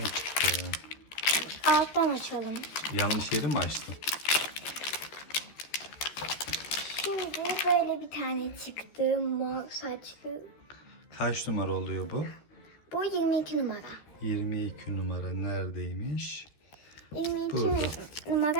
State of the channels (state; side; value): late; right; 14 ms